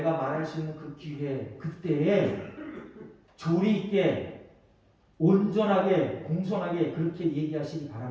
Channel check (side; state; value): both; identical; correlation 1.00